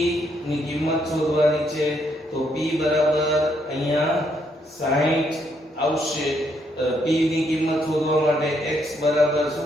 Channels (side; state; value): both; normal; correlation 0.74